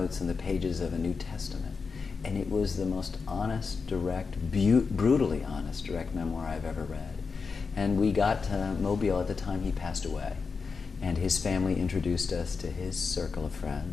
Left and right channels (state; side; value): quieter; right; 5.0 dB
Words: in the pages of a New Testament. And it was the most honest, direct, brutally honest, direct memoir I've ever read. And we got to Mobile at the time he passed away. And his family introduced us to his circle of